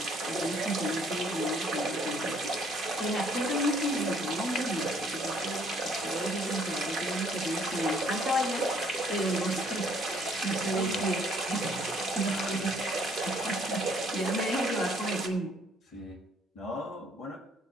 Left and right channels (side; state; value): both; normal; correlation 0.63